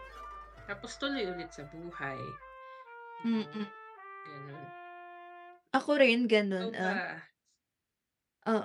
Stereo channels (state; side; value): identical; both; correlation 1.00